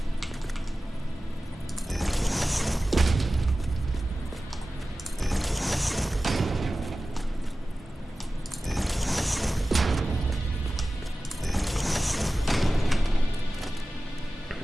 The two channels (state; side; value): normal; both; correlation 0.96